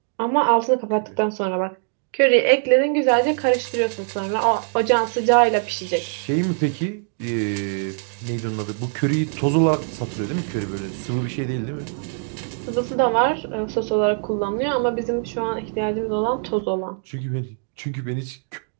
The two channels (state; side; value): silent; left; 59 dB below the other